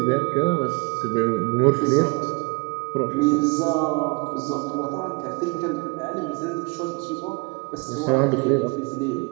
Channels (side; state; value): left; quieter; 29.6 dB